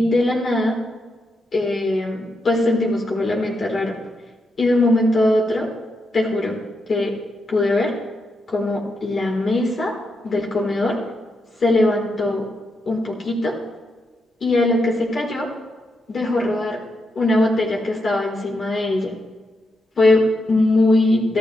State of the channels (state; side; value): normal; both; correlation 0.83